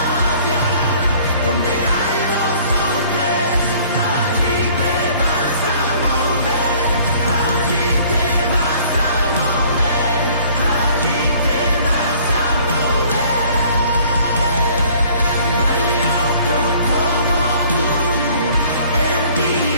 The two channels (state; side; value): inverted; both; correlation -0.55